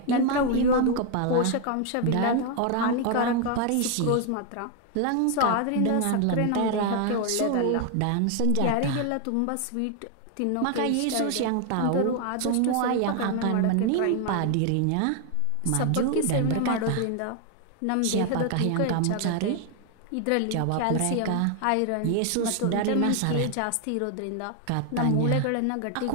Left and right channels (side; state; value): both; different; correlation 0.00